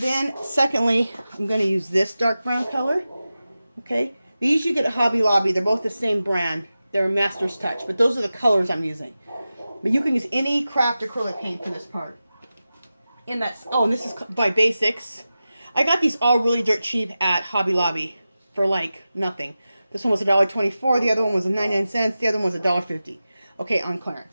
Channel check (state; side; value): inverted; both; correlation -0.94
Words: then secondly, I'm going to use this dark brown color, okay? These you get at Hobby Lobby. They're both the same brand. They're Master's Touch, but those are the colors I'm using. But you can use any craft acrylic paint for this part. And this is by Basics. I got these all really dirt cheap at Hobby Lobby for like nothing. This one was $1.24. The other one was 99 cents. The other one was $1.50. Okay, on